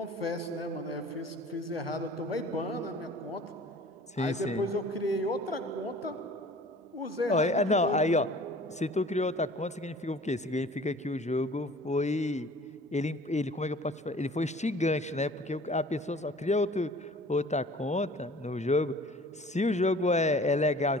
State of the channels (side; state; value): both; normal; correlation 0.48